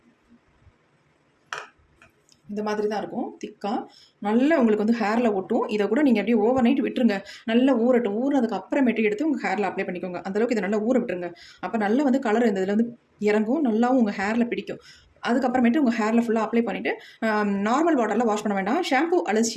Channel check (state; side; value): identical; both; correlation 1.00